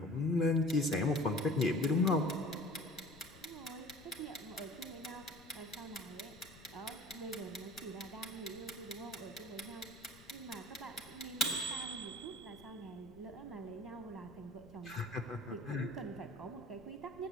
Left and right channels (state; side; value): noise; left; rumble, 21 dB below the sound